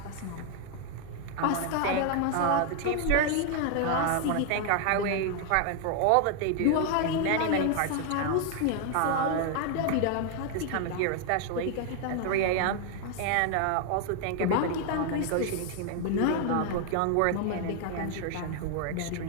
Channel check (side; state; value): both; different; correlation 0.00